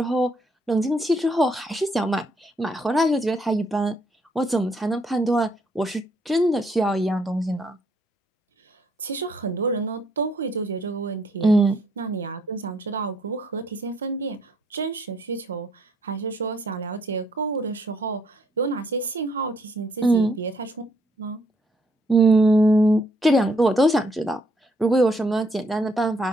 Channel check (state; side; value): normal; both; correlation 0.69